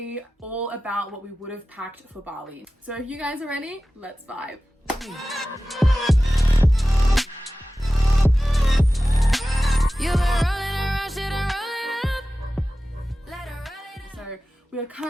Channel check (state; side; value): normal; both; correlation 0.95